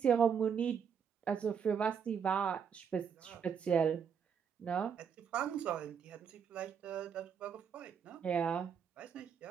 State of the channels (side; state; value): left; quieter; 7.2 dB